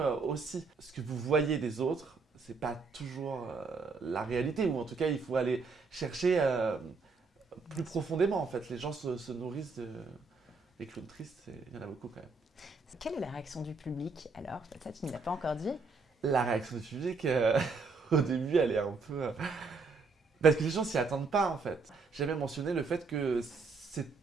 aussi. Ce que vous voyez des autres, c'est pas toujours la réalité, ou en tout cas, il faut aller chercher plus profondément, en fait. Les gens se nourrissent des clowns tristes, il y en a beaucoup quand même. Quelle est la réaction du public alors? Ça, tu ne l'as pas encore dit. La réaction du public, au début, elle est un peu... parce que les gens s'y attendent pas, en fait. J'ai même mentionné le fait que,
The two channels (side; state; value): left; quieter; 4.3 dB